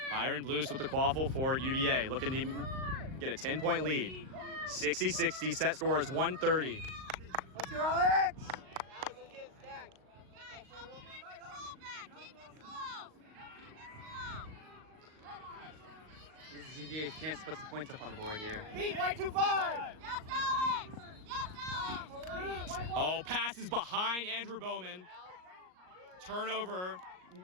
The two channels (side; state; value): left; late; 38 ms